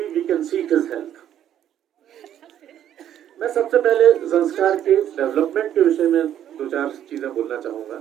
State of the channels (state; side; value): quieter; left; 10.7 dB